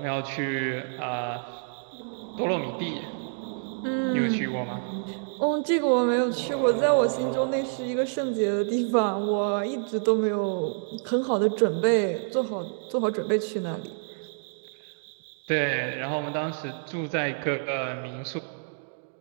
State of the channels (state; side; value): silent; left; digital silence